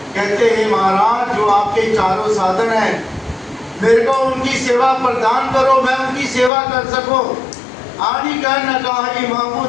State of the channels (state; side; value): drops out; right; at 6.5 s